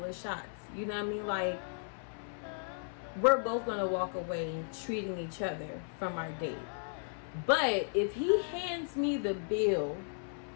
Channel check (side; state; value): right; silent; 54 dB below the other